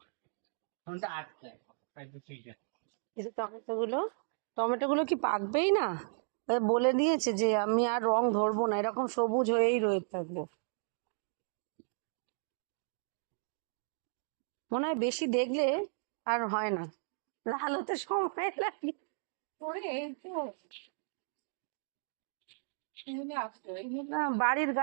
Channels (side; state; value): left; silent; digital silence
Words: ফোনটা আটকে যায়। এই যে টমেটো গুলো কি পাকবেই না? বলে দিয়েছে যে আমি আর রং ধরবো না, এরকম সবুজ হয়েই রয়ে থাকবো। মনে হয় বেশি দেখলে আর হয় না, লাল হতে সময় লাগে। না, বাড়ির